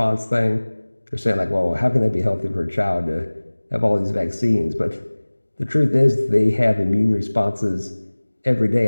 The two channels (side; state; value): both; inverted; correlation -1.00